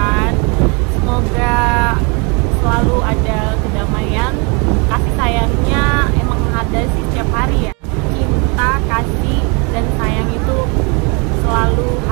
Semoga selalu ada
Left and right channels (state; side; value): quieter; left; 31.9 dB